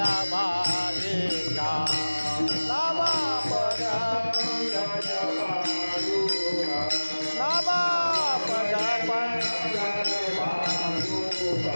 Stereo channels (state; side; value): inverted; both; correlation -1.00